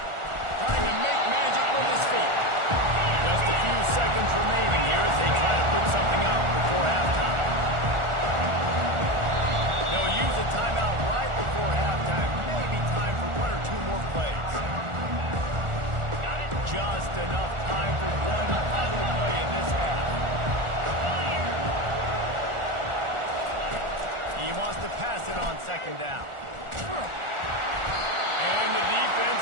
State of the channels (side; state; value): left; late; 1.4 ms